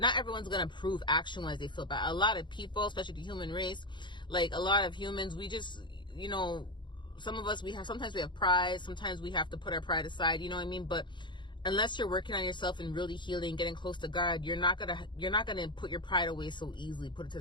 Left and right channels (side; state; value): right; late; 0.23 ms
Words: everyone's gonna prove action-wise they feel bad. A lot of people, especially the human race, like a lot of humans, we just, you know, sometimes we have pride, sometimes we have to put our pride aside, you know what I mean? But unless you're working on yourself and really healing, getting close to God, you're not gonna put your pride away so easily, put it to